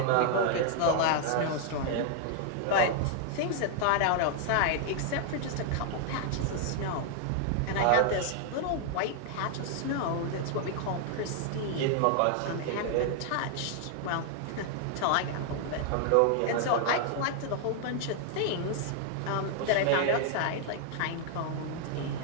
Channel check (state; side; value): different; both; correlation 0.00